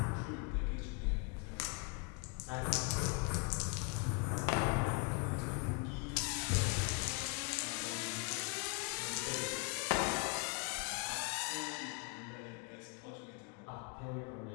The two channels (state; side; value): quieter; right; 32.8 dB